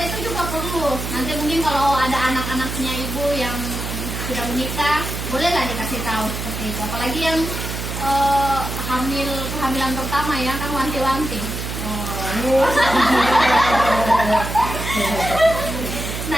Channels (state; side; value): noise; right; hum, 5 dB below the sound